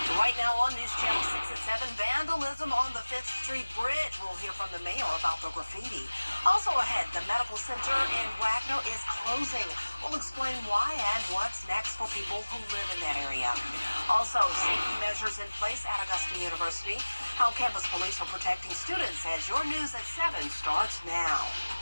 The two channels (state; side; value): inverted; both; correlation -1.00